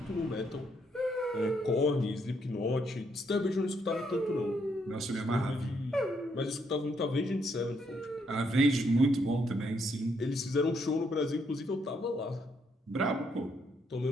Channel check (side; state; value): both; normal; correlation 0.74